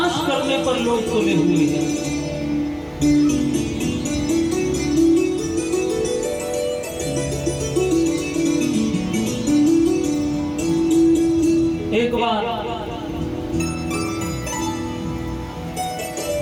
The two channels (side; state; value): both; identical; correlation 1.00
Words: करने पर लोग तुले हुए हैं। एक बार